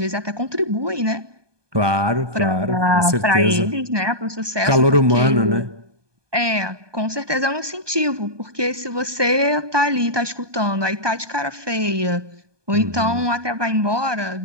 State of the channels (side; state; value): left; late; 1.2 ms